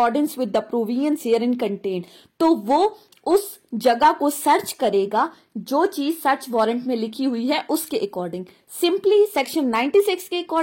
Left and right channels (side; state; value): both; identical; correlation 1.00